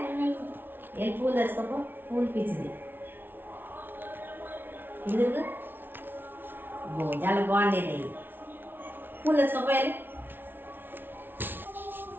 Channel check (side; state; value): left; late; 0.10 ms